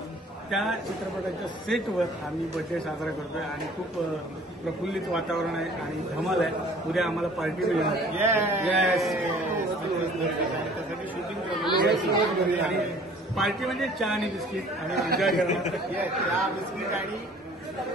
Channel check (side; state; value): both; normal; correlation 0.51